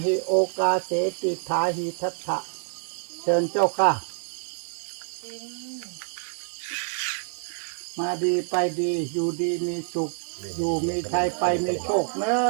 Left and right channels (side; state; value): left; silent; digital silence